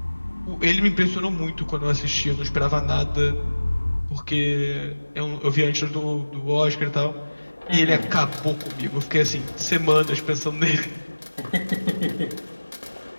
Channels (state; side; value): inverted; both; correlation -1.00